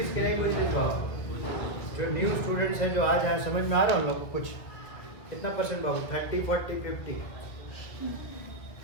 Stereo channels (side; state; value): right; late; 2.2 ms